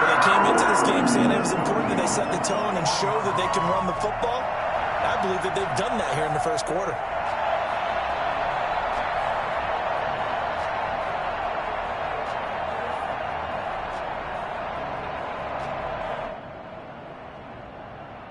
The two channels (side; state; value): both; identical; correlation 1.00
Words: came into this game saying it was important that they set the tone and show that they can run the football. I believe that they've done that here in the first quarter.